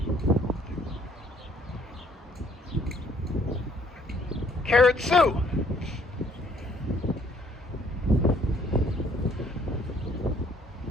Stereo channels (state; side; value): normal; both; correlation 0.63